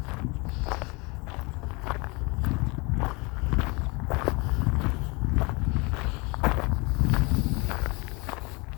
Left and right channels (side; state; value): right; quieter; 27.8 dB